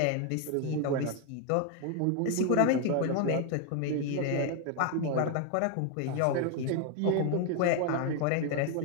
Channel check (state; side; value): different; both; correlation 0.01